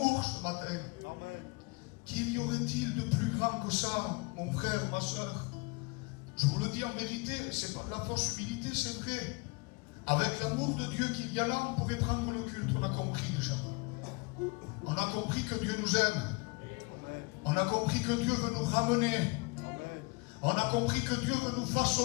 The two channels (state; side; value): quieter; right; 28.7 dB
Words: ce matin. Qu'il y aurait-il de plus grand que ça, mon frère, ma soeur? Je vous le dis en vérité, c'est pas de la fausse humilité, c'est vrai. Avec l'amour de Dieu qu'il y a là, on pourrait prendre le culte, on a compris déjà. On a compris que Dieu nous aime. On a compris que Dieu veut nous ramener. On a compris que Dieu veut nous